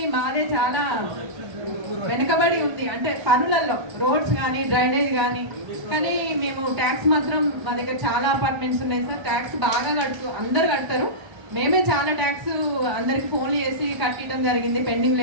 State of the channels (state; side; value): late; left; 1.3 ms